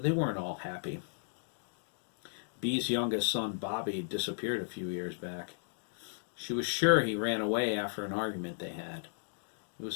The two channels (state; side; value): silent; right; digital silence